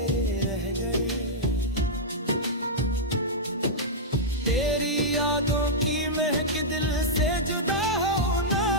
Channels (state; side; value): normal; both; correlation -0.08